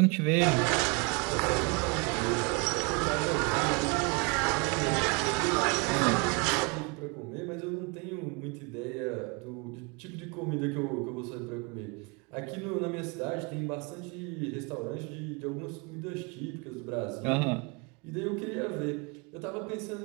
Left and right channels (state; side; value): quieter; left; 30.9 dB